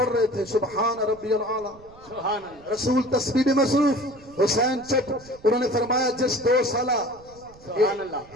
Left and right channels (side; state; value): right; noise; rumble, 24 dB below the sound